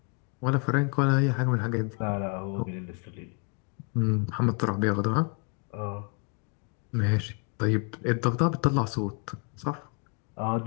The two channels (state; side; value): quieter; right; 35.7 dB